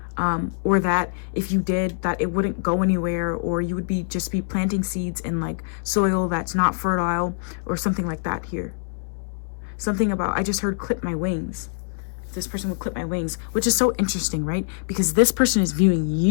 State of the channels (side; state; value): right; silent; digital silence